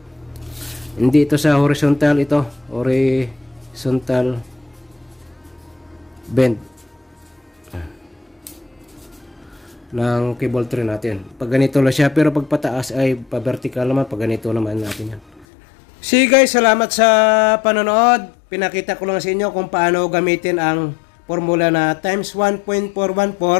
hindi ito sa horizontal, ito horizontal bend ng cable tray natin. Pag ganito lang siya, pero pag pataas ay pa-vertical naman. Pag ganito naman natin yan. See, guys, salamat sa panonood. Pinakita ko lang sa inyo kung paano gamitin ang formula na times 1.414,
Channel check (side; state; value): right; drops out; at 15.5 s